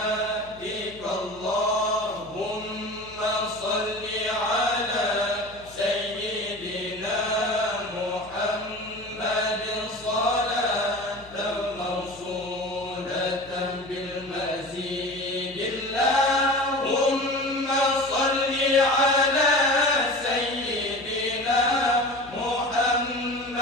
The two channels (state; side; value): noise; left; hum, 23 dB below the sound